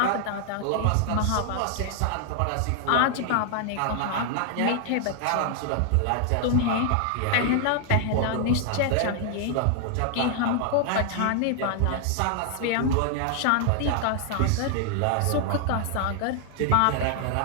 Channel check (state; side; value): different; both; correlation 0.00